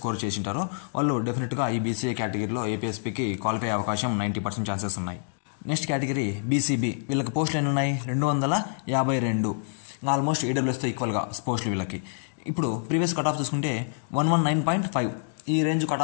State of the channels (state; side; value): silent; right; digital silence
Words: చేసింటారో వాళ్ళు డెఫినెట్గా ఈ బీసీఏ కేటగిరీలో ఏపీఎస్పీకి క్వాలిఫై అయ్యే అవకాశం 90% ఛాన్సెస్ ఉన్నాయి. Next category BCB. వీళ్ళకి పోస్టులు ఎన్ని ఉన్నాయి? 252. ఆల్మోస్ట్ ఈడబ్ల్యూఎస్తో ఈక్వల్గా పోస్టులు వీళ్ళకి. ఇప్పుడు ప్రీవియస్ కట్ ఆఫ్ చూసుకుంటే 119.5 ఈ రేంజ్ కట్